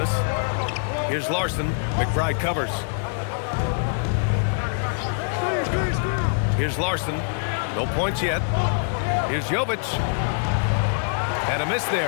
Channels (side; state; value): right; silent; 62 dB below the other